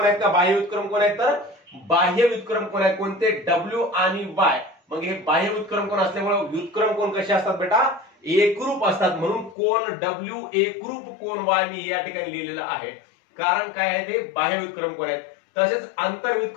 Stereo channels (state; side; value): drops out; right; at 9.6 s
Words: आहेत का बाह्य व्युत्क्रम कोण आहेत, तर बाह्य व्युत्क्रम कोण आहेत, कोणते, डब्ल्यू आणि वाय. मग हे बाह्य व्युत्क्रम कोण असल्यामुळे व्युत्क्रम कोण कसे असतात बेटा, एकरूप असतात. म्हणून कोण डब्ल्यू एकरूप कोण वाय मी या ठिकाणी लिहिलेलं आहे. कारण काय आहे, ते बाह्य व्युत्क्रम कोण आहेत. तसेच आंतर